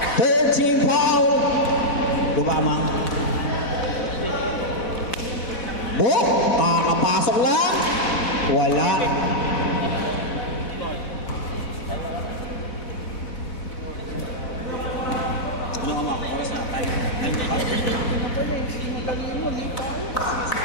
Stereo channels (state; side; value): late; right; 4.1 ms